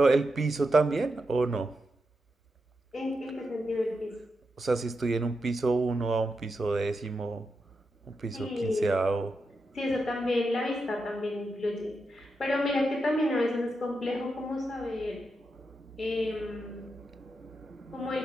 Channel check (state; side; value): normal; both; correlation 0.86